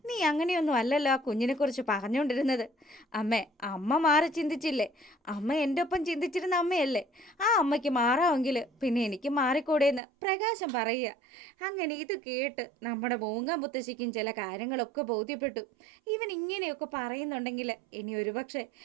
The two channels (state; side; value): drops out; left; at 10.0 s